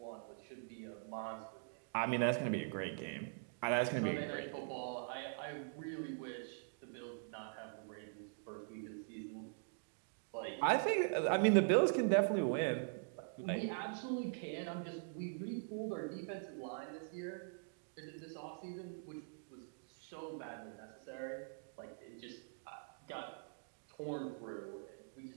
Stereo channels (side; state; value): left; silent; digital silence